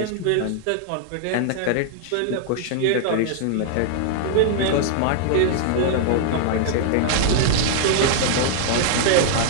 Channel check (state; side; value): different; both; correlation -0.01